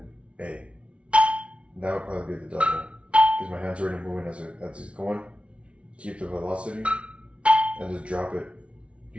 A. That would probably be the double. Because my hand's already moving as it's going. Keep the velocity. And just drop it.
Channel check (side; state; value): left; late; 0.061 ms